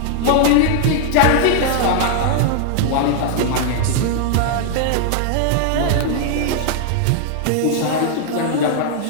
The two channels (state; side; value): different; both; correlation 0.00